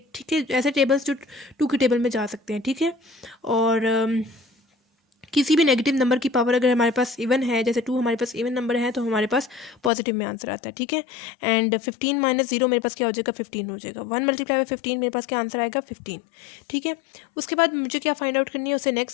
ठीक है, ऐसे टेबल्स जो 2 के टेबल में जा सकते हैं, ठीक है। और किसी भी नेगेटिव नंबर की पावर अगर हमारे पास इवन है, जैसे 2 हमारे पास इवन नंबर है, तो हमारे पास पॉजिटिव में आंसर आता है, ठीक है। एंड 15 माइनस 0 मेरे पास क्या हो जाएगा, 15 हो जाएगा। 1 मल्टीप्लाई बाय 15 मेरे पास क्या आंसर आएगा, 15, ठीक है। उसके बाद मुझे क्या फाइंड आउट करनी है, उससे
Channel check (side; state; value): right; drops out; at 9.9 s